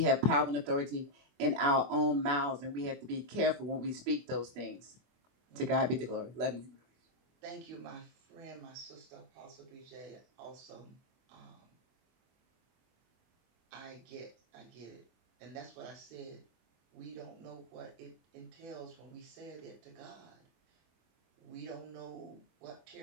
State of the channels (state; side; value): late; left; 24 ms